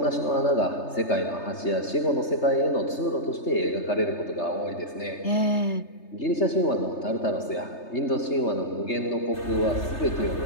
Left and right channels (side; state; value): right; late; 3.3 ms